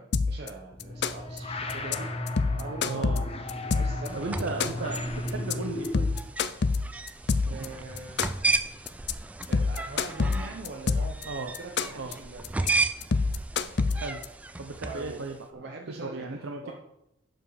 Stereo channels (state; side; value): normal; both; correlation 0.54